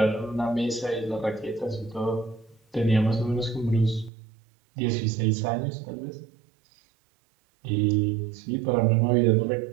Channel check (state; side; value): drops out; left; at 4.1 s